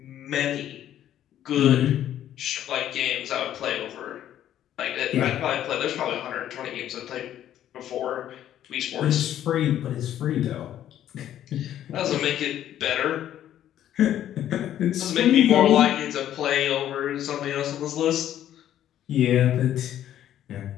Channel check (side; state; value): right; quieter; 11.4 dB